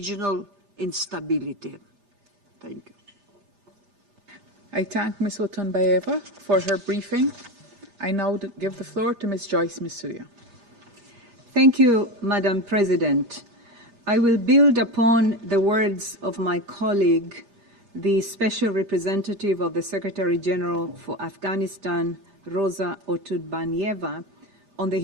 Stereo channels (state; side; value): late; left; 8.3 ms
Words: instability. Thank you. I thank Ms. Otunbayeva for her briefing. I now give the floor to Ms. Joyce Misuya. Thank you, Madam President. I will build upon the words of my colleague, the Special Representative of the Secretary General for Afghanistan, Rosa Otunbayeva, on the